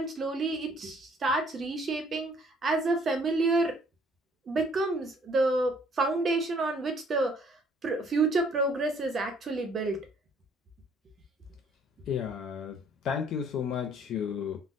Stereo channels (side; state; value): both; normal; correlation 0.61